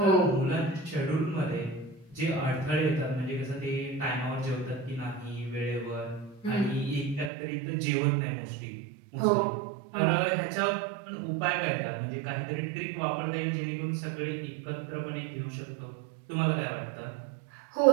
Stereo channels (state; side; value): drops out; left; at 7.3 s